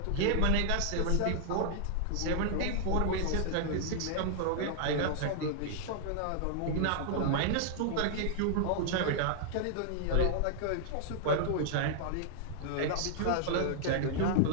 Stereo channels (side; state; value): both; different; correlation -0.01